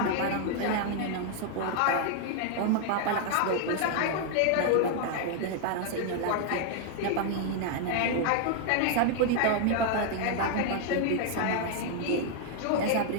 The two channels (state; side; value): different; both; correlation 0.00